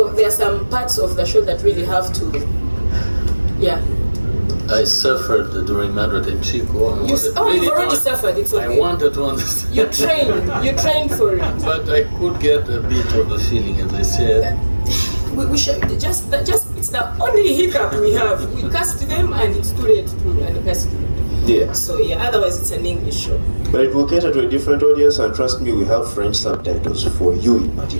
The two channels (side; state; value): both; inverted; correlation -1.00